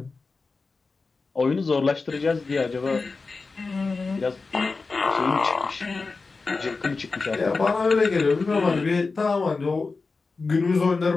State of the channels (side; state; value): right; quieter; 4.1 dB